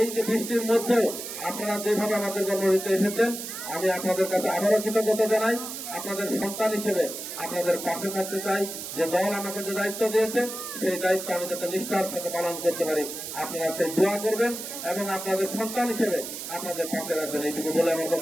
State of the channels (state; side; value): noise; right; hiss, 8 dB below the sound